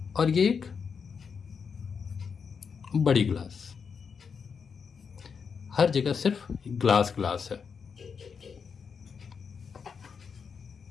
और ये एक बड़ी ग्लास, हर जगह सिर्फ ग्लास ग्लास है।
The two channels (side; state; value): right; quieter; 6.1 dB